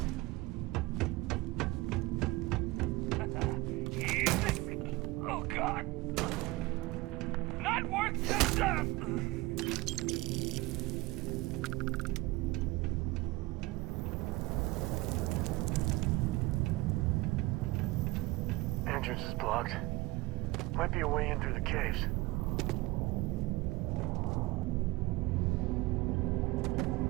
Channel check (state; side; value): quieter; left; 21.0 dB